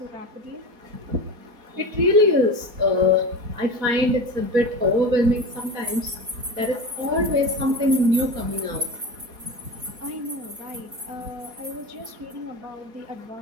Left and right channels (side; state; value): left; late; 4.2 ms